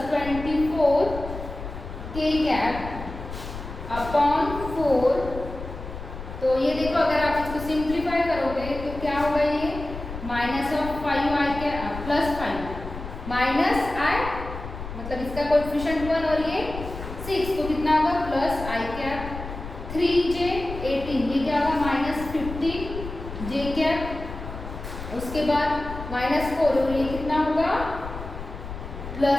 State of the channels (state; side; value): noise; left; rumble, 10 dB below the sound